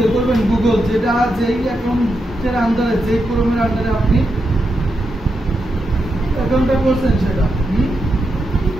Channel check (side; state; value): both; normal; correlation 0.85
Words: করবেন। গুগল যেটা যেই অ্যাকাউন্টের আন্ডারে, যে ক্রোমের আন্ডারে আপনি অ্যাকাউন্টটা করছেন সেটা